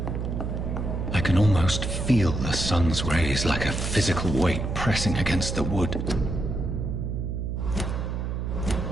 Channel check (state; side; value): noise; right; hum, 3 dB below the sound